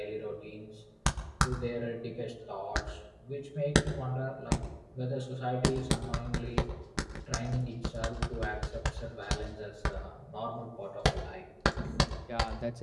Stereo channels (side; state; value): both; identical; correlation 1.00